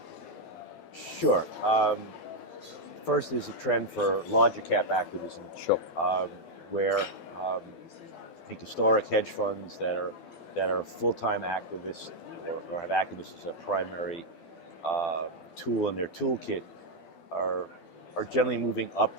Sure. First is a trend for larger cap activism. Sure. Where I think historic hedge funds that are full-time activists or have activists as a primary tool in their toolkit are generally moving up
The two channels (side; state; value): right; late; 12 ms